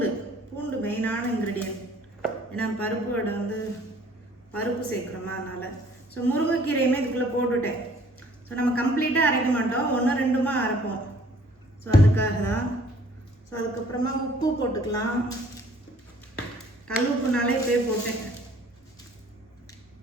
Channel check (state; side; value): normal; both; correlation 0.56